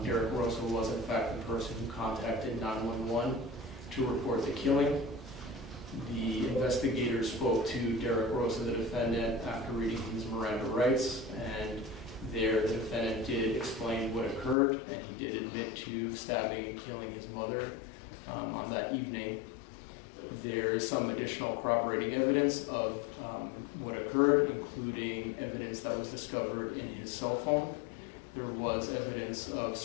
Derek Rosa was in fact the person who contacted 911 to report the killing. The investigators spoke to Derek Rosa, the defendant, after reading his Miranda rights, and there the defendant did explain what occurred, and he did admit to stabbing and killing his mother on that evening. There is some additional corroborating evidence of what occurred, including evidence that was discovered in his cell phone. There was evidence of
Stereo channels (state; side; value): drops out; right; at 14.6 s